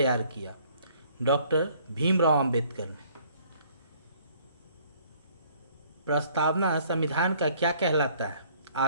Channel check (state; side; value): inverted; both; correlation -0.59